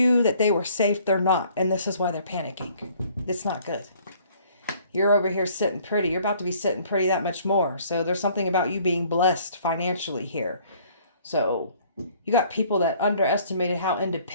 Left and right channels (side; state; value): both; inverted; correlation -0.57